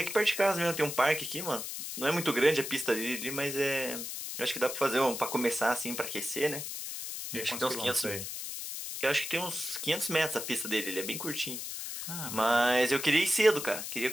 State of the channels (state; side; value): noise; left; hiss, 6 dB below the sound